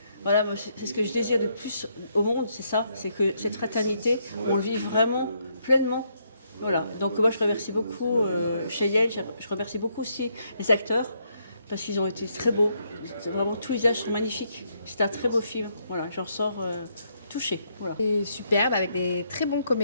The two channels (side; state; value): both; inverted; correlation -0.75